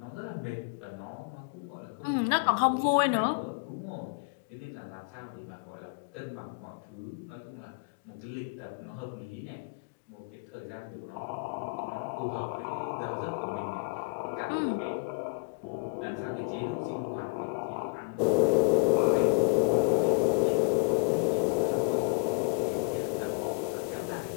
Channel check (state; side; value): quieter; right; 34.7 dB